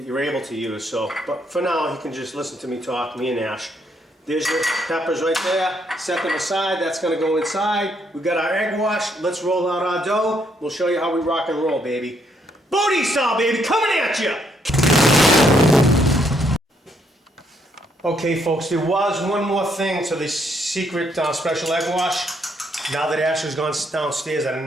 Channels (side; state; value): both; normal; correlation 0.72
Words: able to use. So, but for now, you can just listen to me talk, me and Ash. There's your peppers right there. Set them aside. That's going to go inside. We've got our egg wash. Let's roll out our dough. We'll show you how we rock and roll, baby. Booty style, baby, coming at you. Okay, folks, there was one more thing to this secret special egg wash. Now that Ash has gone downstairs, I